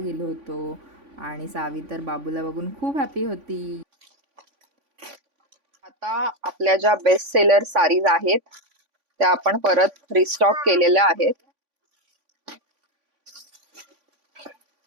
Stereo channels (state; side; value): late; left; 3.5 ms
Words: होतो. आणि सावी तर बाबूला बघून खूप हॅपी होती. आता आपल्या ज्या बेस्ट सेलर साडीज आहेत त्या आपण परत रिस्टॉक केलेल्या आहेत.